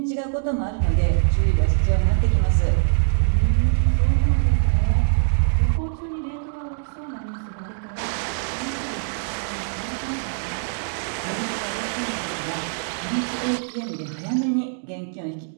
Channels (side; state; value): left; silent; digital silence